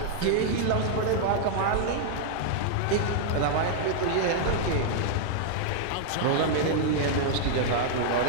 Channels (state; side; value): different; both; correlation -0.01